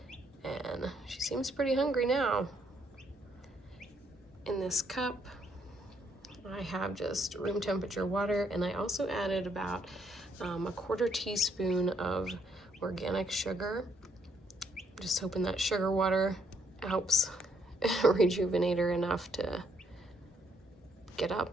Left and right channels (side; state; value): both; normal; correlation 0.71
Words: and she seems pretty hungry now. In this cup, I have just room temperature water, and I also added about a 1/4 teaspoon of organic sugar. Just hoping that sugar water helps rejuvenate her enough to get